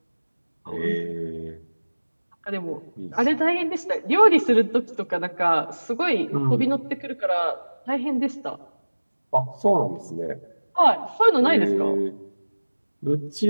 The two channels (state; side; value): inverted; both; correlation -1.00